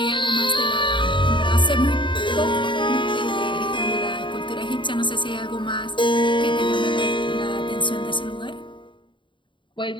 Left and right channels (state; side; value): late; right; 0.23 ms